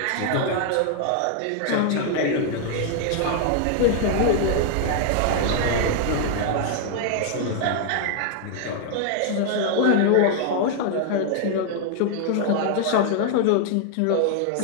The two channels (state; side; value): different; both; correlation 0.00